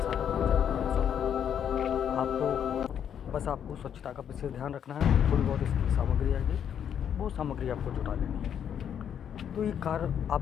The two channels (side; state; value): right; quieter; 8.8 dB